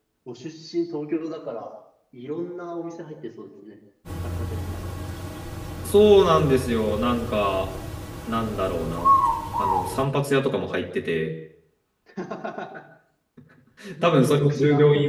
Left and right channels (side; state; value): both; identical; correlation 1.00